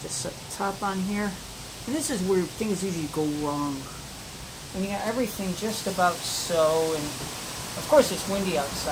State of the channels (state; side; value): identical; both; correlation 1.00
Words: just set the top on here. And this is where things usually go wrong. And you got everything just about so. And of course, it's windy